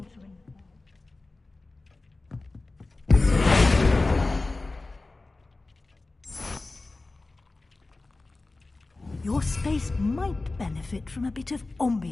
Your space might benefit from a bit of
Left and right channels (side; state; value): right; quieter; 3.3 dB